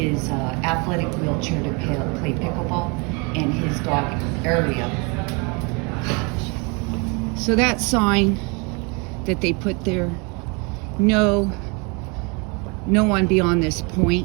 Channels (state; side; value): quieter; left; 31.1 dB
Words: athletic wheelchair to play pickleball, and his dog area. So that sign that they put there, no one beyond this